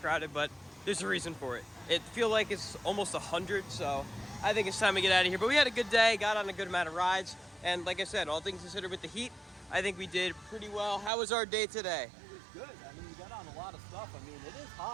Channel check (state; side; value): drops out; left; at 11.1 s